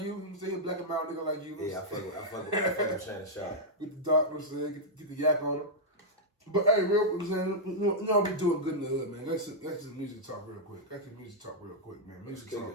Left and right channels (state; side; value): normal; both; correlation -0.06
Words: you. You say he a black and mild nigga like you. Yeah, I fuck with Shannon Sharp. Get the dark, get the yak on him. But hey, real quick, you know we doing good in the hood, man. Let's just music talk real quick. Man. Music